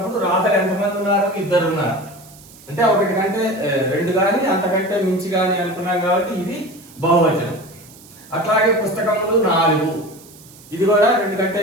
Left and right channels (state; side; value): noise; right; hiss, 22 dB below the sound